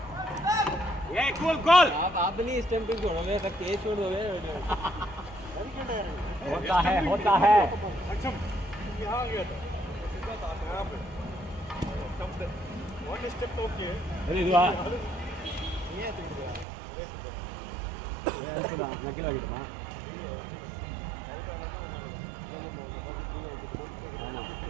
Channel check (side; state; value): left; drops out; at 16.7 s